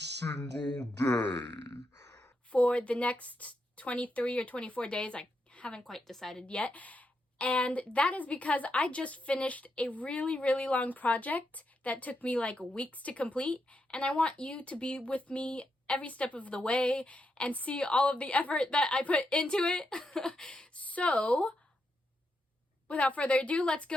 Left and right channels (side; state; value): both; normal; correlation 0.83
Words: day. For the next 23 or 24 days. I haven't quite decided yet. And that is because I just finished a really long project that took me like weeks to complete, and I want you to be with me every step of the way and see all of the effort that I put into it. So, without further ado, let's